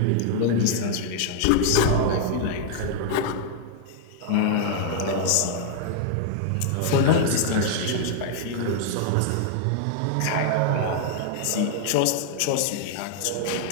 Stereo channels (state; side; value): different; both; correlation -0.01